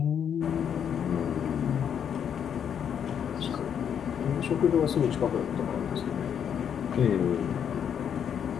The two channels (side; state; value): right; quieter; 8.3 dB